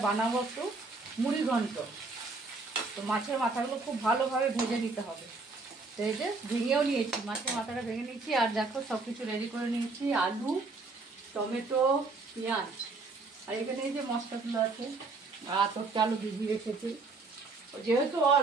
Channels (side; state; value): left; quieter; 3.7 dB